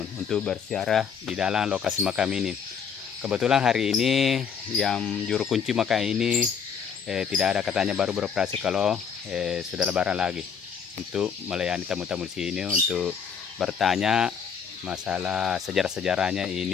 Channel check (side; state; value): right; quieter; 6.9 dB